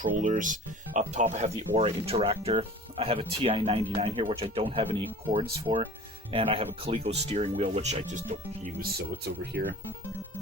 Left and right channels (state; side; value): normal; both; correlation 0.41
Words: Up top I have the Aura Interactor. I have a TI-99 here, which I don't have any cords for. And I have a Coleco steering wheel, which I just don't use, so it's over here.